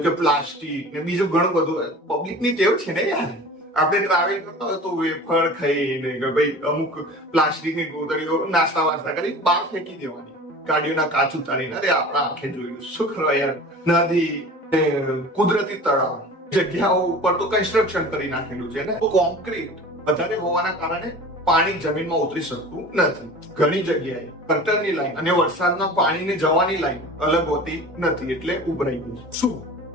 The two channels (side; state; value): both; normal; correlation 0.39